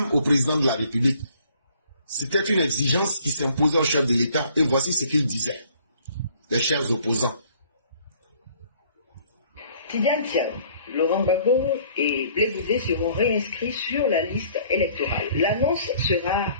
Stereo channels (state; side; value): inverted; both; correlation -0.58